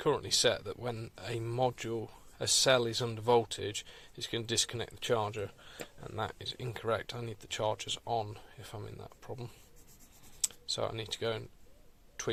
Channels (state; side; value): identical; both; correlation 1.00